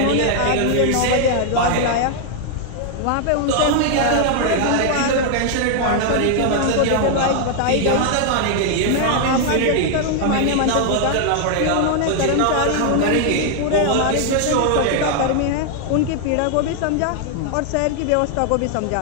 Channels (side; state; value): both; different; correlation 0.00